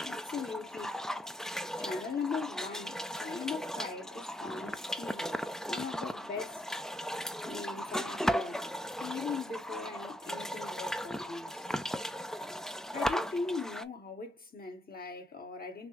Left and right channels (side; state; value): both; normal; correlation 0.77